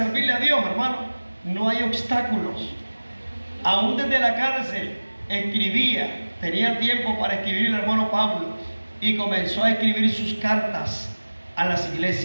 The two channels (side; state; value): both; inverted; correlation -1.00